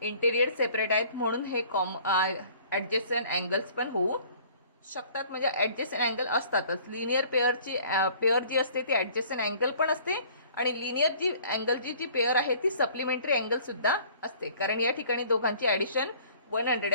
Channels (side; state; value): both; inverted; correlation -0.53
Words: इंटेरियर सेपरेट आहेत, म्हणून हे ॲडजेसंट अँगल्स पण होऊ शकतात. म्हणजे ॲडजेसंट अँगल असतातच. लिनियर पेअर जी असते ती ॲडजेसंट अँगल पण असते आणि लिनियर जी अँगल जी पेअर आहे ती सप्लिमेंटरी अँगल सुद्धा असते, कारण या ठिकाणी दोघांची ॲडिशन